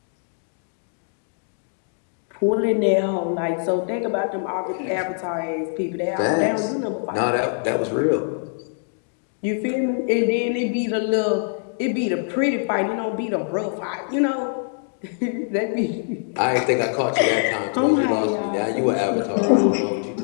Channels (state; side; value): silent; right; 63 dB below the other